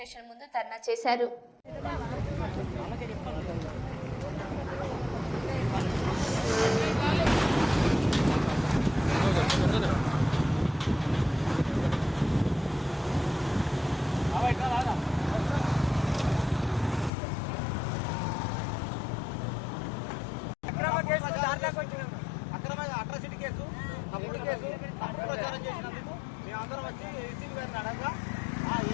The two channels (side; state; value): right; drops out; at 17.1 s